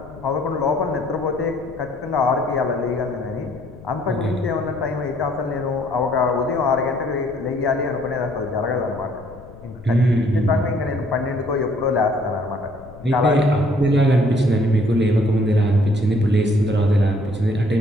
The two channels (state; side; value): noise; left; rumble, 19 dB below the sound